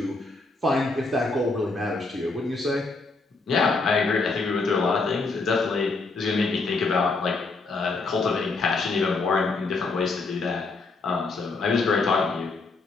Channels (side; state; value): right; quieter; 3.8 dB